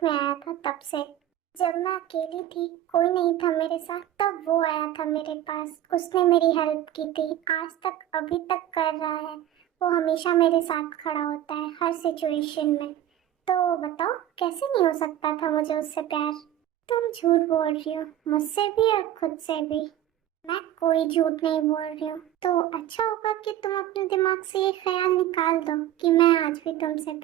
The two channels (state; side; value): quieter; left; 12.3 dB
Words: में आया था तब से। जब मैं अकेली थी, कोई नहीं था मेरे साथ, तब वो आया था मेरे पास। उसने मेरी हेल्प की थी, आज तक अभी तक कर रहा है। वो हमेशा मेरे साथ खड़ा होता है हर सिचुएशन में। तो बताओ, कैसे नहीं हो सकता था मुझे उससे प्यार? तुम झूठ बोल रही हो, मुझसे भी और खुद से भी। मैं कोई झूठ नहीं बोल रही हूँ। तो अच्छा होगा कि तुम अपने दिमाग से ये ख्याल निकाल दो कि मैं आज भी तुमसे